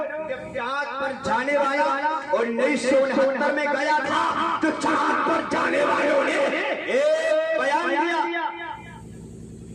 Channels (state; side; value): identical; both; correlation 1.00